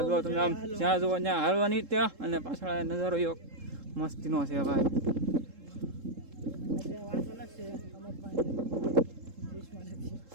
જો તમે આમ જ્યાં જુઓ ત્યાં હાલવાની ત્યાં, અને પાછળ અહીંયા નજારો એવો મસ્તીનો છે ભાઈ.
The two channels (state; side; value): late; left; 3.7 ms